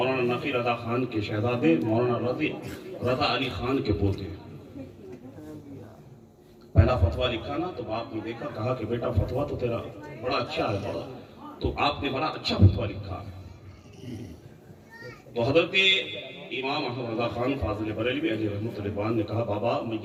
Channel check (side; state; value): both; identical; correlation 1.00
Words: نفی رضا خان کے شہزادے مولانا رضا علی خان کے پوتے, پہلا فتویٰ لکھا نا تو باپ نے دیکھا, کہا کہ بیٹا فتویٰ تو تیرا بڑا اچھا ہے, بڑا تو آپ نے بڑا اچھا فتویٰ لکھا ہے. تو حضرت امام احمد رضا خان فاضل بریلوی علیہ رحمۃ اللہ نے کہا بابا میں